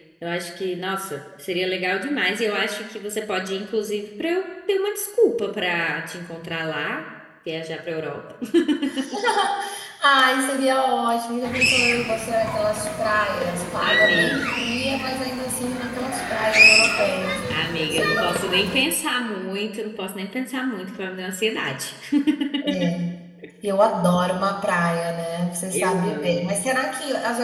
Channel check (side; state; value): both; identical; correlation 1.00